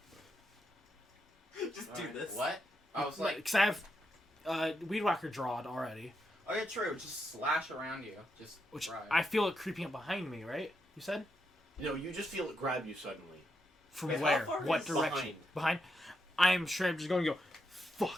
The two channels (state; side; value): normal; both; correlation 0.82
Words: Just do Alright. this. What? I was like, Because I have Weed Whacker drawed already. oh yeah, true. Just slash around you. Just Which try. I feel it creeping up behind me, right? You said? No, you just feel it grab you suddenly. From Wait, how where? far What is direction? Behind? I'm sure I'm just going to go,